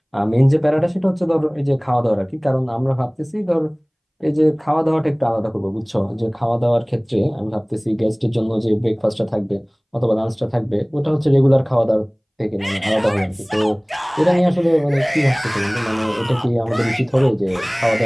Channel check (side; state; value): both; identical; correlation 1.00